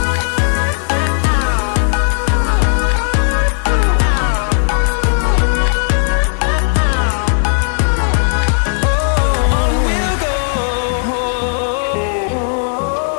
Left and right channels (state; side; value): silent; right; 65 dB below the other